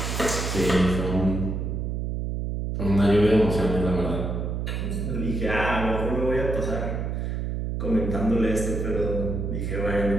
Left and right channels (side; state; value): right; noise; hum, 2 dB below the sound